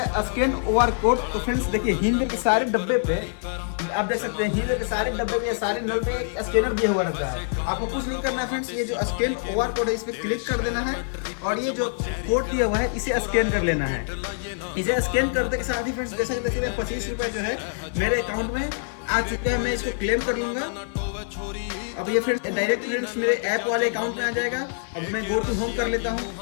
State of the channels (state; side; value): silent; right; 55 dB below the other